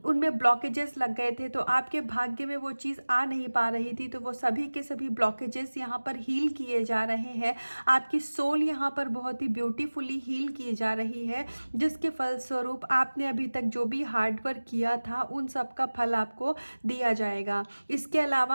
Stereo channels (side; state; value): both; inverted; correlation -1.00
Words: उनमें ब्लॉकेजेस लग गए थे, तो आपके भाग्य में वो चीज़ आ नहीं पा रही थी, तो वो सभी के सभी ब्लॉकेजेस यहाँ पर हील किए जा रहे हैं। आपकी सोल यहाँ पर बहुत ही ब्यूटीफुली हील की जा रही है, जिसके फलस्वरूप आपने अभी तक जो भी हार्ड वर्क किया था, उन सब का फल आपको दिया जाएगा। इसके